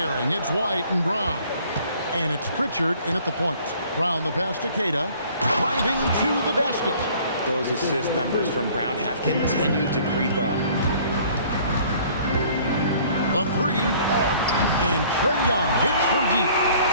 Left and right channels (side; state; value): both; inverted; correlation -0.55